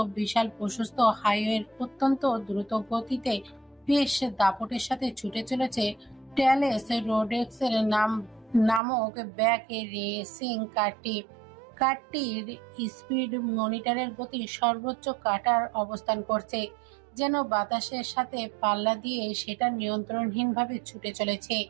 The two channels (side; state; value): left; drops out; at 8.8 s